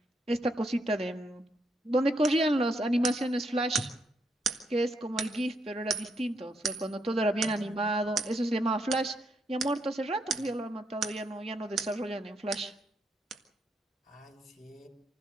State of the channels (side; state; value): both; normal; correlation 0.77